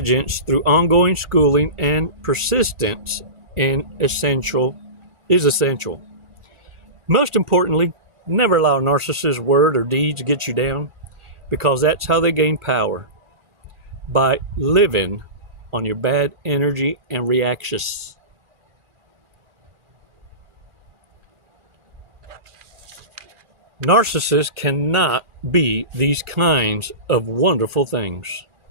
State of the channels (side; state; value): left; late; 2.4 ms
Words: through ongoing schooling and persistence essential. Most importantly, never allow a narcissist's word or deeds to get you down, because that's how they gain power, by living on your bad energy and reactions. Narcissists cannot be these kinds of wonderful things.